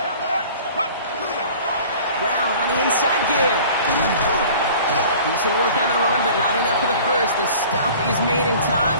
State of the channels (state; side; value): inverted; both; correlation -0.45